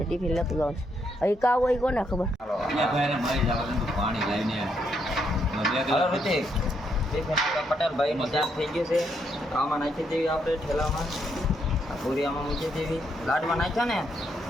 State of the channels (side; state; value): both; normal; correlation 0.76